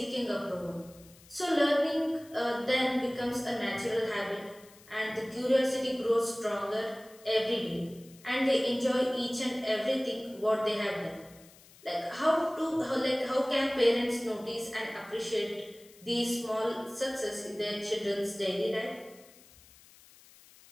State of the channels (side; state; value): left; noise; hiss, 24 dB below the sound